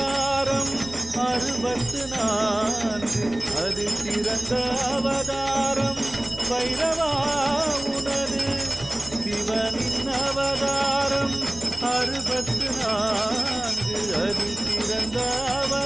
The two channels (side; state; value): right; noise; rumble, 18 dB below the sound